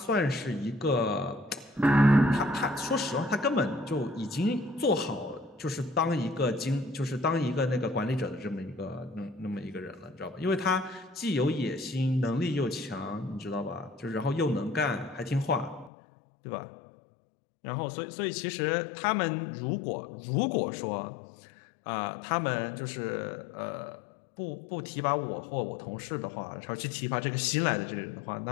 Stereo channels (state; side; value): drops out; right; at 15.9 s